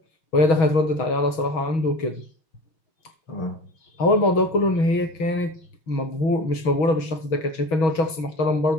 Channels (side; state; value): right; late; 6.2 ms